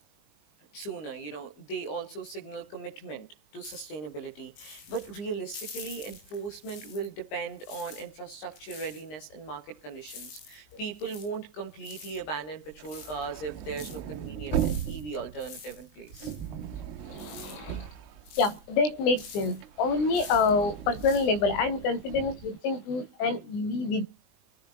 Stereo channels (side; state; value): right; late; 20 ms